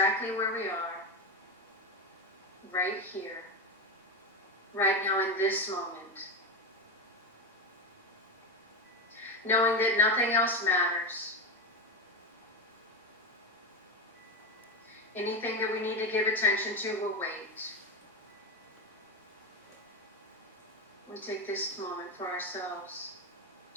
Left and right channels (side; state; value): both; normal; correlation 0.16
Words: where we are, right here, right now in this moment. Knowing that nothing else matters. Anything that we need to give attention to will wait. We take this moment for ourselves